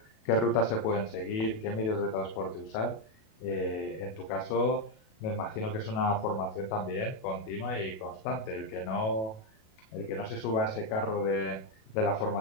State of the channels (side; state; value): right; late; 37 ms